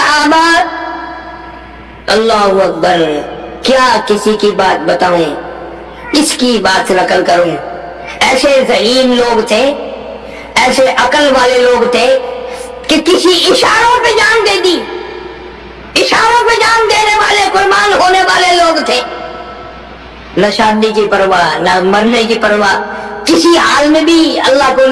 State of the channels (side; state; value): both; identical; correlation 1.00